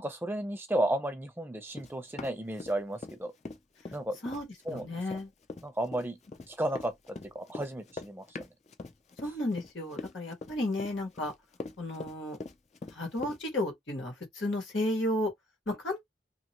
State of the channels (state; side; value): normal; both; correlation 0.71